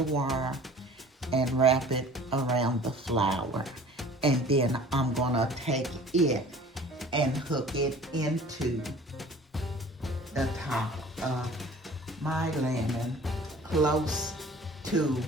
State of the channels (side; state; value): both; normal; correlation 0.47